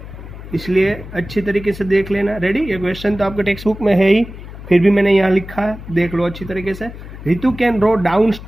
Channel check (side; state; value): left; noise; hum, 13 dB below the sound